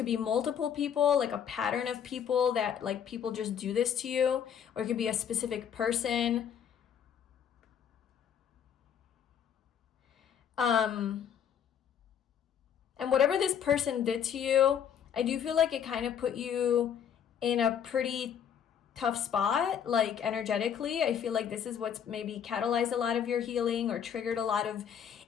be multiple people, like a pattern of people that like people just do this to you, or it could be a specific person. And whatever this person did to you, I do feel like it kind of put you in a pretty tough spot, like energetically. I feel like this is what's maybe catalyzed a lot of your healing or triggered a lot of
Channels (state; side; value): quieter; right; 8.5 dB